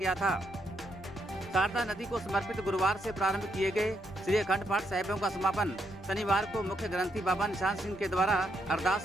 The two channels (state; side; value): normal; both; correlation 0.77